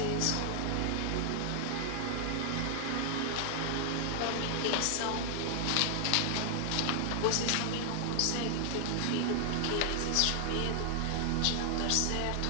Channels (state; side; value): different; both; correlation 0.00